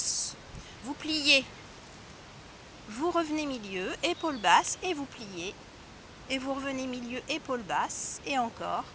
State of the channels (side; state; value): both; identical; correlation 1.00